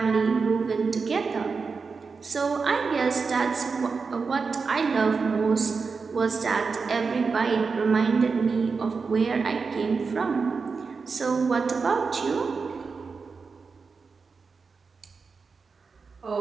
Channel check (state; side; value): quieter; left; 4.9 dB